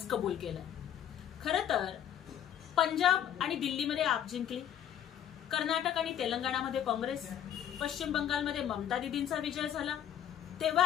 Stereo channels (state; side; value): quieter; right; 10.1 dB